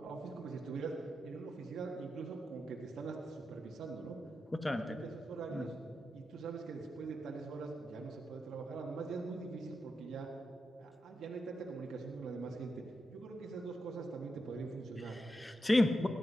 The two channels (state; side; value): normal; both; correlation 0.87